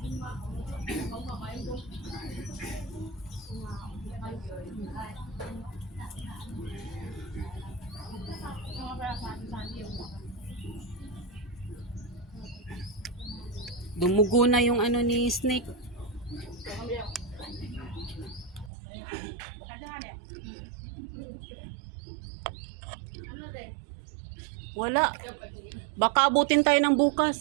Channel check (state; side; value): drops out; left; at 18.7 s